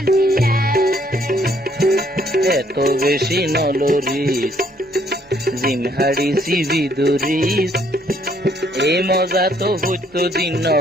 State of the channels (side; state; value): both; normal; correlation 0.66